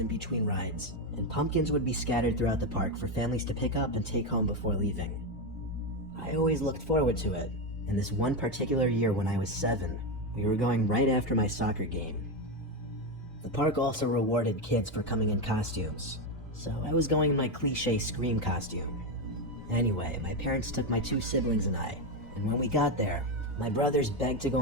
between rides, and pumpkins would be scattered throughout the park for families to pick up and take home before leaving. I always looked forward to it, and this one particular year when I was 7, we were going right after my soccer game. The park also rewarded kids for coming in costumes, so I was going in my cliche Scream costume. Anyway, my parents took my 2 siblings and I, and when we got there, my brothers begged to go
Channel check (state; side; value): normal; both; correlation 0.10